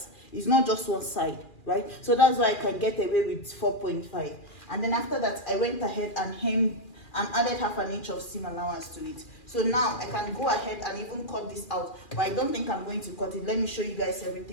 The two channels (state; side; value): late; right; 2.4 ms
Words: It's not just one side, right? So that's why I can get away with 4.5. And then after that, I went ahead and hemmed and added 1/2 inch of seam allowance to it. So now I can go ahead and even cut this out, but I don't think I'm going to cut it. Let me show you guys